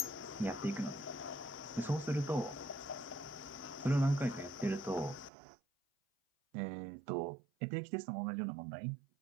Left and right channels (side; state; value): left; drops out; at 5.3 s